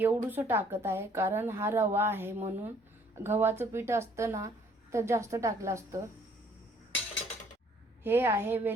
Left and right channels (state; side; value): normal; both; correlation 0.60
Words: एवढंसं टाकत आहे, कारण हा रवा आहे म्हणून. गव्हाचं पीठ असतं ना तर जास्त टाकलं असतं. हे आहे